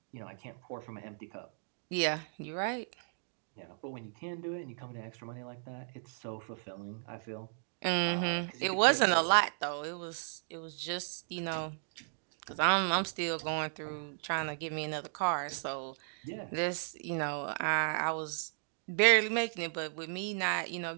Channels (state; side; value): silent; left; digital silence